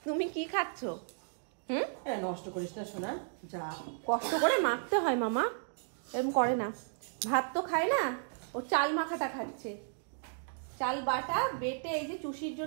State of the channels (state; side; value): silent; left; digital silence